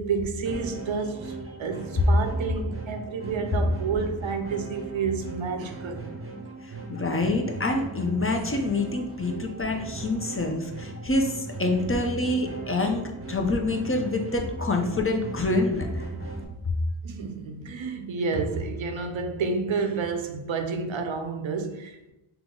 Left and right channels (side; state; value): both; normal; correlation 0.34